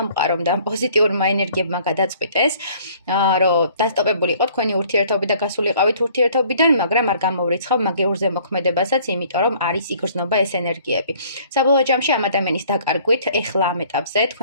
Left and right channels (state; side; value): inverted; both; correlation -0.56